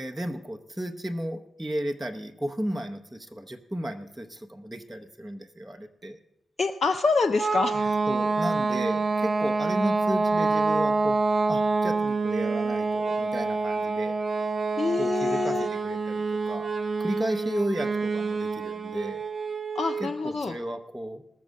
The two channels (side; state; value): both; normal; correlation 0.91